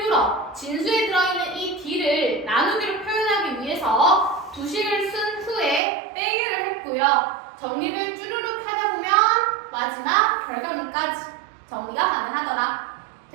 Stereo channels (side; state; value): left; drops out; at 5.8 s